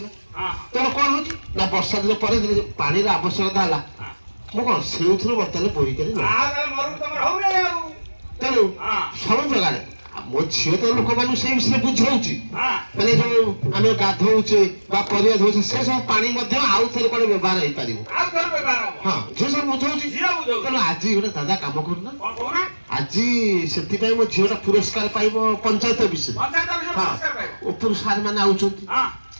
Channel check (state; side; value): inverted; both; correlation -1.00